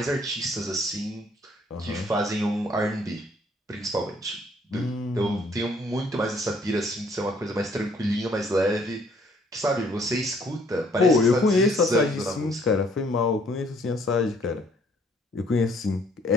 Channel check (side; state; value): both; normal; correlation 0.63